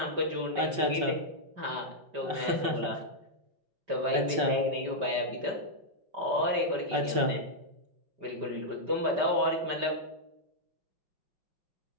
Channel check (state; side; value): late; left; 5.3 ms